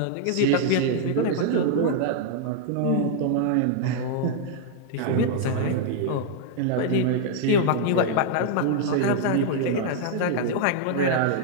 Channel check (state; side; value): different; both; correlation -0.01